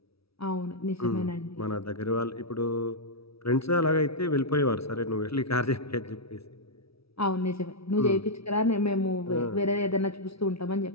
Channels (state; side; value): late; right; 0.76 ms